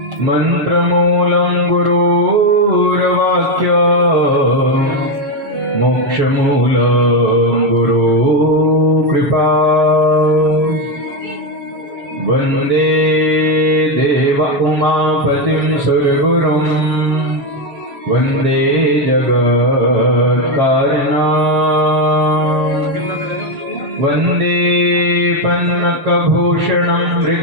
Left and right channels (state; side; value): late; left; 6.9 ms